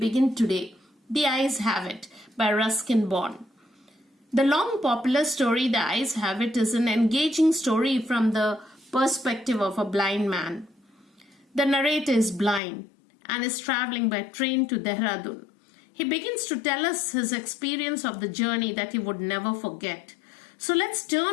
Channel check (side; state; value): right; drops out; at 12.6 s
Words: today. The Eyes Have It by Ruskin Bond. The long popular story The Eyes Have It is an engaging story from the perspective of a blind man. The narrator is blind and is traveling by train to Dehradun. He begins to tell us his experience of the journey that he would never forget. So let's